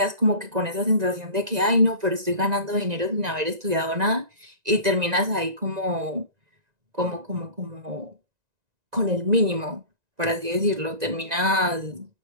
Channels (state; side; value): late; left; 1.9 ms